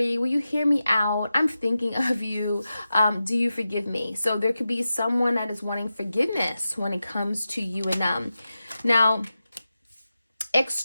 Will you hear me out? I'm thinking of you. Do you forgive me? So there could be someone that is wanting forgiveness when it comes to you and them. Now,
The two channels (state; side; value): inverted; both; correlation -0.92